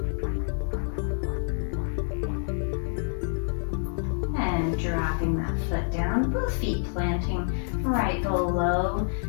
And dropping that foot down, both feet planting right below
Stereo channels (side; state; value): right; silent; 60 dB below the other